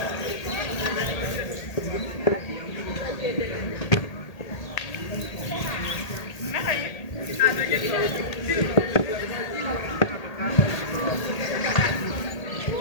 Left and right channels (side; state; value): right; late; 1.8 ms